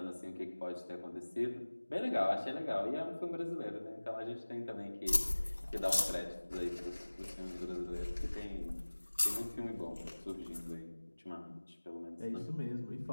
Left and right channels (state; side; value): inverted; both; correlation -1.00